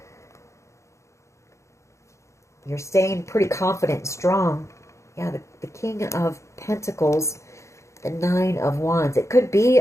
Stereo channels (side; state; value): right; late; 0.14 ms